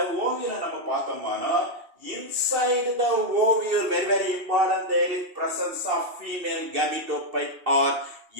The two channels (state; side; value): late; left; 2.8 ms